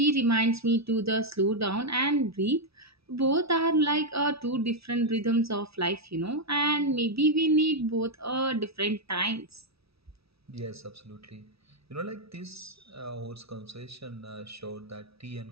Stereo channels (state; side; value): late; left; 0.77 ms